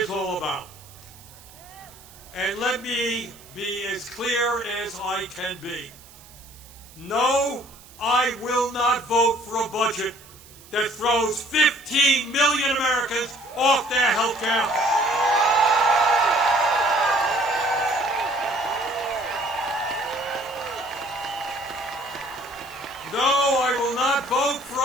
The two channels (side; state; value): right; noise; hiss, 22 dB below the sound